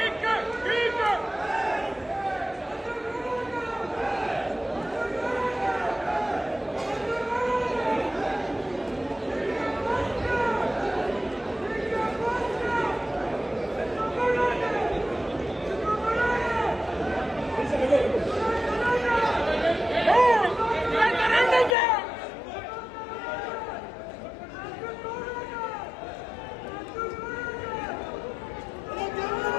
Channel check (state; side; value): drops out; right; at 21.8 s